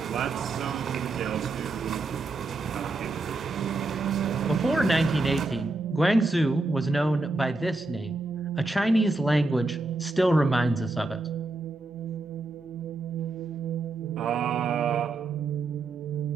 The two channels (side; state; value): left; quieter; 3.2 dB